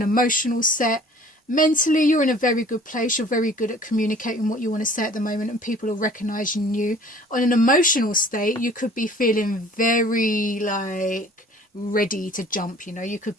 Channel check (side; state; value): both; normal; correlation 0.51